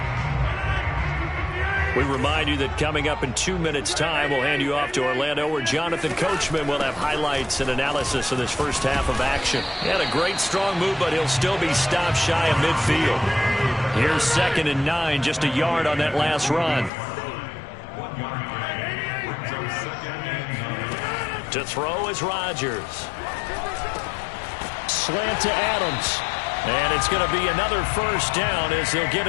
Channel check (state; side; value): drops out; right; at 16.9 s